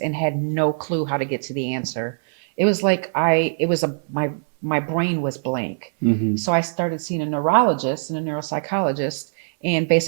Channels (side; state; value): left; silent; 62 dB below the other